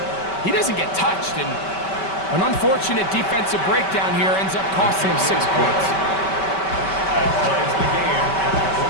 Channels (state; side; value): late; right; 5.2 ms